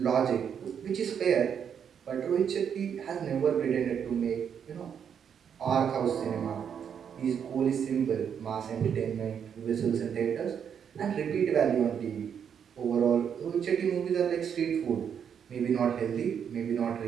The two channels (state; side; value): quieter; left; 7.9 dB